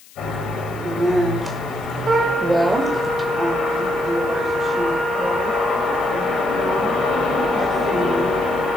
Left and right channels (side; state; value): left; noise; hiss, 24 dB below the sound